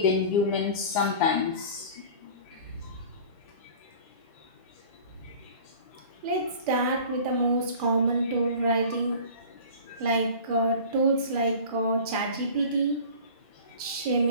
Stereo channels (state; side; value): inverted; both; correlation -0.40